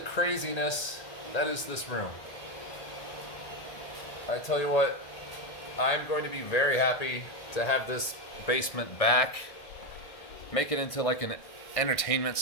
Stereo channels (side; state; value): right; late; 1.9 ms